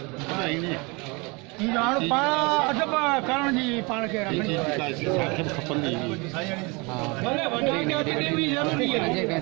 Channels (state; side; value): quieter; left; 28.1 dB